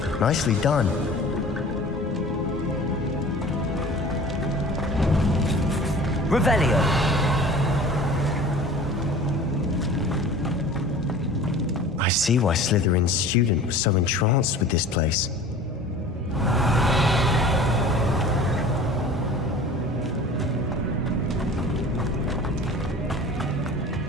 Nicely done. Revelio. I see why Slytherin's student was so entranced with this place.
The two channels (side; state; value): both; normal; correlation 0.42